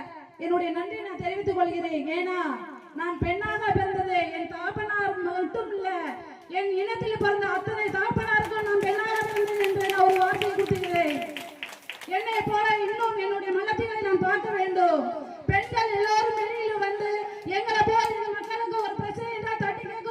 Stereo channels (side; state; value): both; identical; correlation 1.00